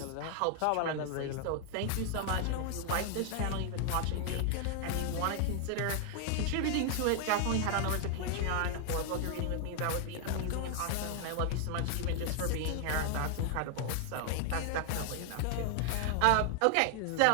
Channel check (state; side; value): different; both; correlation 0.00